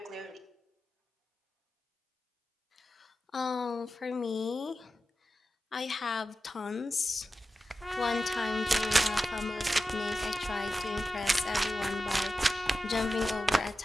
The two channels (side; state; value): both; normal; correlation 0.92